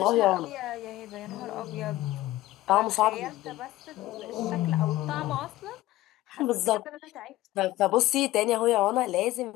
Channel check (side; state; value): right; quieter; 16.4 dB